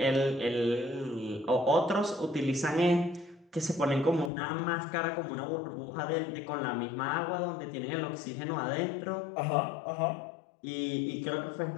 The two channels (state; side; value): drops out; right; at 4.3 s